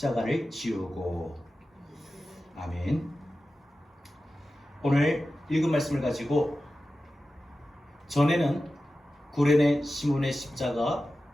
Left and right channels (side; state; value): both; normal; correlation 0.94